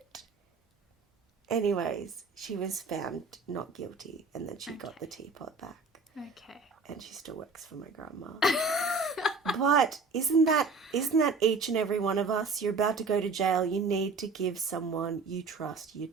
Anyways, she was found not guilty, and then she got the teapot back. Okay. And she still works for my grandma. But isn't that each and every one of us? You're about to go to jail. You need to give someone you trust your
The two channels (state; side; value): quieter; left; 4.1 dB